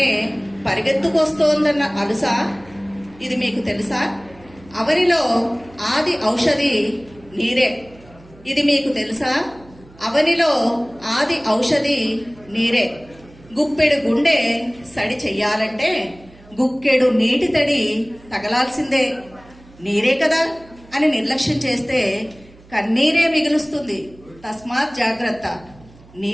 పరిగెత్తుకొస్తోందన్న అలుసా ఇది మీకు తెలుసా? అవనిలో ఆది ఔషధి నీరే, ఇది మీకు తెలుసా? అవనిలో ఆది ఔషధి నీరే. గుప్పెడు గుండె సడి చెయ్యాలంటే గుక్కెడు నీటి తడి తగలాల్సిందే. నీరే కదా అని నిర్లక్ష్యం చేస్తే కన్నీరే మిగులుస్తుంది, తస్మాత్ జాగ్రత్త.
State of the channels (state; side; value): noise; right; hum, 24 dB below the sound